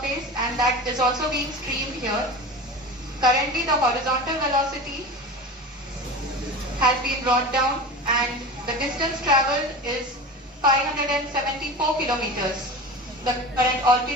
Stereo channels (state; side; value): normal; both; correlation 0.31